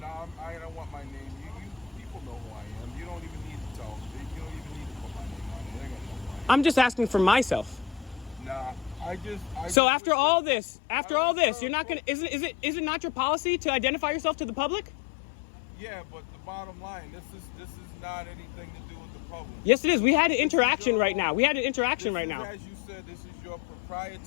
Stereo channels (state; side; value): drops out; right; at 9.8 s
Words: No, I don't want my name. You people know who I am. You don't even need to tell. You don't even need to put my name on it. They're gonna know who I am. I'm just asking for myself. Nah, So after all this, you're not gonna. Is it not your policy to identify yourself to the public? Yeah, but the bottom line, this is not anything to do with the public. Yes, it is. We had an interaction right now. As you said, this is your